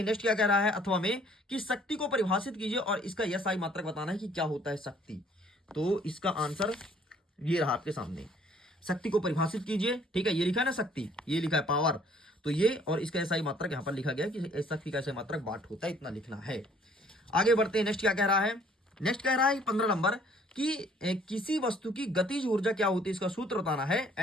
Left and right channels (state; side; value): normal; both; correlation 0.59